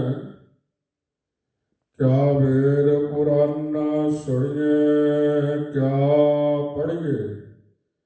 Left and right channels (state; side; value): identical; both; correlation 1.00